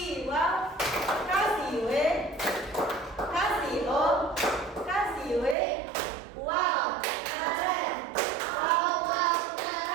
wow, kasih w, kasih o, kasih w. Wow, keren. Wow, wow,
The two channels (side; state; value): left; drops out; at 5.6 s